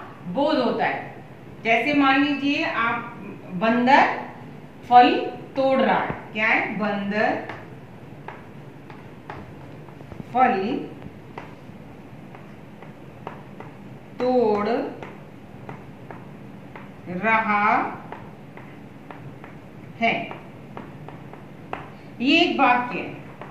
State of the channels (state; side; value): identical; both; correlation 1.00